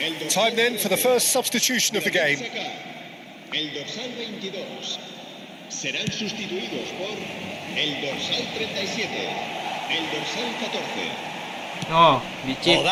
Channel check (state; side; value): identical; both; correlation 1.00